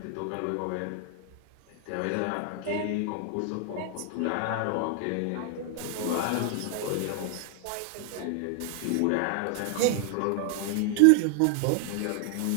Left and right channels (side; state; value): both; different; correlation 0.00